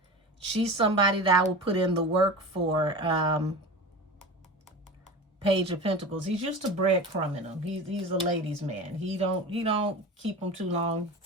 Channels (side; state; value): both; normal; correlation 0.31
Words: She's somebody that I will put in the work for. Page of Pentacles. He's used to breadcrumbing him. He's a ladies' man. He don't keep them too long.